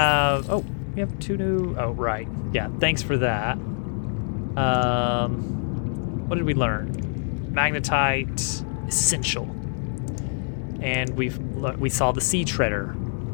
Oh, we have 2 new. Oh, right. Yeah. Thanks for that. What did we learn? Magnetite essential, and we saw the sea treader.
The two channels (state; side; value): silent; right; 59 dB below the other